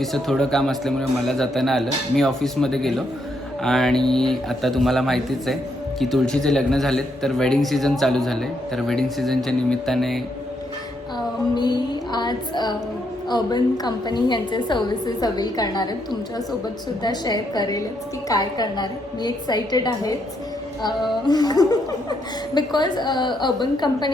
थोडं काम असल्यामुळे मला जाताना आलं. मी ऑफिसमध्ये गेलो आणि आता तुम्हाला माहितीच आहे की तुळशीचे लग्न झालेत तर वेडिंग सीझन चालू झाले, तर वेडिंग सीझनच्या निमित्ताने मी आज अर्बन कंपनी यांचे सर्व्हिसेस अवेल करणार आहे. तुमच्यासोबत सुद्धा शेअर करेलच की काय करणार आहे. मी एक्सायटेड आहेच बिकॉज अर्बन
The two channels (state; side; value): normal; both; correlation 0.76